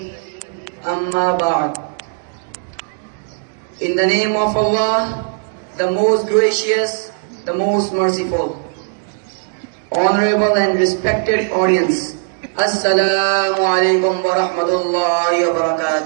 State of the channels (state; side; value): silent; left; digital silence